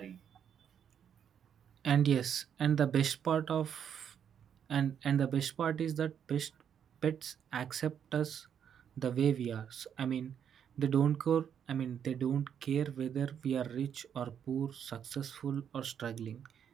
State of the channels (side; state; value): left; quieter; 8.4 dB